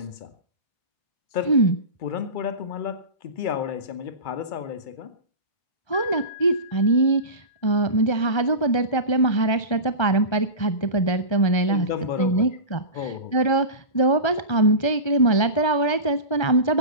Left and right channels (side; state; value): right; late; 1.3 ms